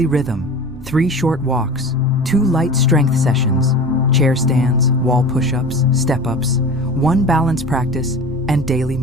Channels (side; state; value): both; normal; correlation 0.35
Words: rhythm, 3 short walks, 2 light strength sessions, chair stands, wall push-ups, step-ups, 1 balance practice, and daily